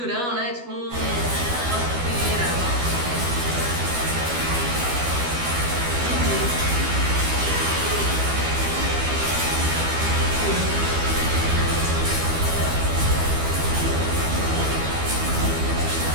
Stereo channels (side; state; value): left; late; 12 ms